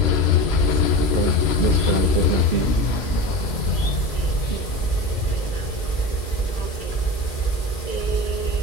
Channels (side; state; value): right; late; 2.7 ms